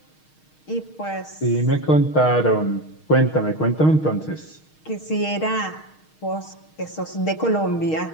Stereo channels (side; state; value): right; late; 6.4 ms